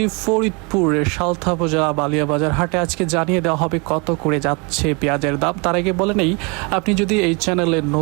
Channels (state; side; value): quieter; left; 30.7 dB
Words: ফরিদপুরের সালথা উপজেলা বালিয়াবাজার হাটে। আজকে জানিয়ে দেওয়া হবে কত করে যাচ্ছে পেঁয়াজের দাম। তার আগে বলে নেই, আপনি যদি এই চ্যানেলে